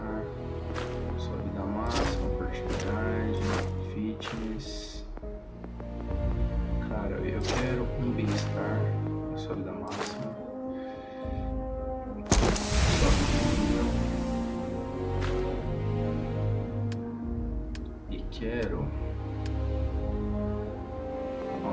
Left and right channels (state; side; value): identical; both; correlation 1.00